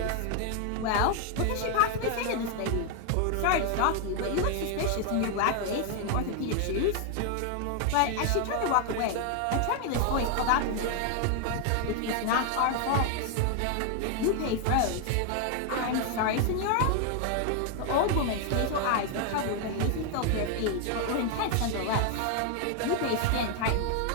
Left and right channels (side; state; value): both; different; correlation 0.00